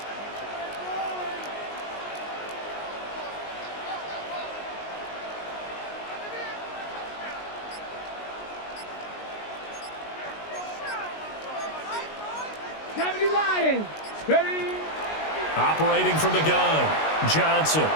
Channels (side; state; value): right; late; 19 ms